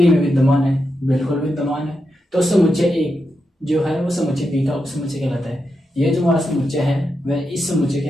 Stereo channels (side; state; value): both; normal; correlation 0.86